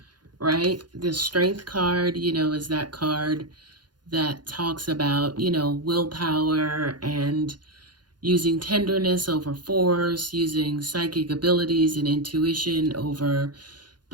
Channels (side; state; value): left; late; 0.70 ms